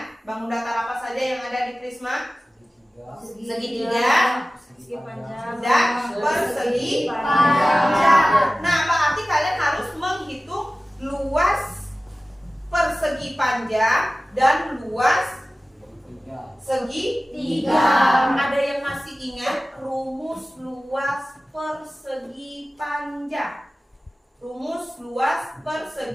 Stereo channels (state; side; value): normal; both; correlation 0.97